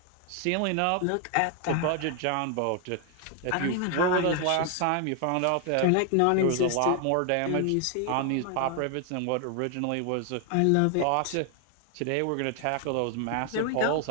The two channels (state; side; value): different; both; correlation 0.00